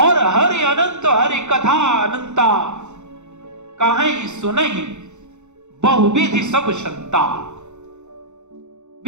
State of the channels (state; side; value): late; left; 0.83 ms